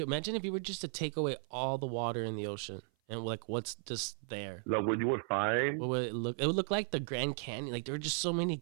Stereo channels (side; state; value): left; silent; 54 dB below the other